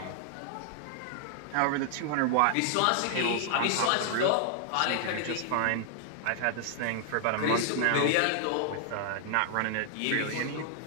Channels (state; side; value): different; both; correlation -0.01